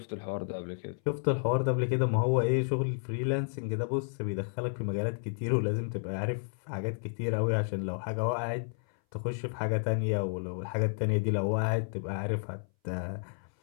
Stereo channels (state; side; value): silent; right; 57 dB below the other